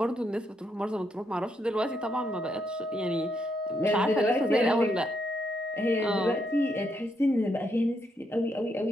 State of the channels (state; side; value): normal; both; correlation 0.77